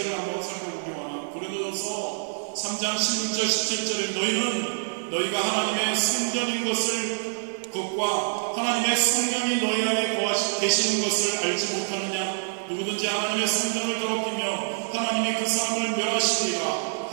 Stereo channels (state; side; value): silent; left; digital silence